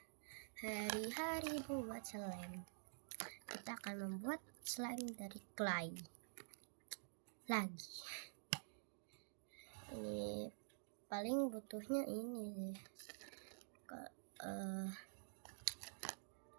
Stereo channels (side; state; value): left; silent; digital silence